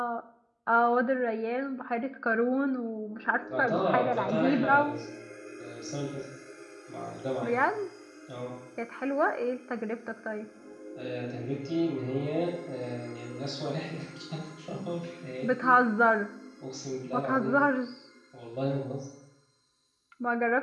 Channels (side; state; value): both; identical; correlation 1.00